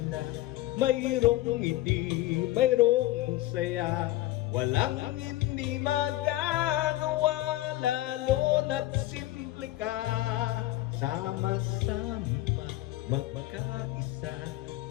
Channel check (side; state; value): right; quieter; 16.2 dB